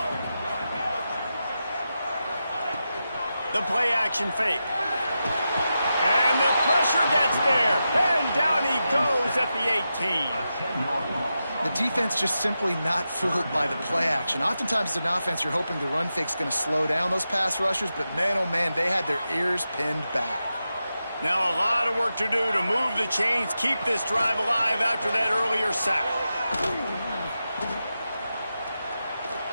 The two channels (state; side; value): inverted; both; correlation -0.90